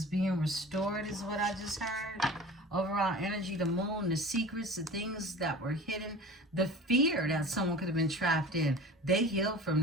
being restored is what I just heard. Overall energy, the moon, the secrets, the things that were hidden, the fear that someone could have been trapped in. They heal from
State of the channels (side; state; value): both; normal; correlation 0.38